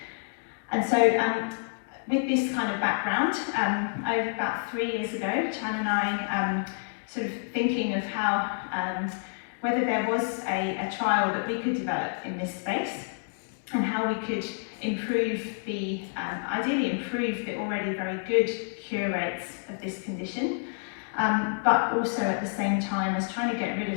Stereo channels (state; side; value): silent; right; digital silence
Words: And so with this kind of background, over about 3 years ago, Chan and I sort of thinking of how, whether there was a trial that we could develop in this space, and how we could improve ideally improve the already very good cure rates of this condition, but also at the same time as trying to get rid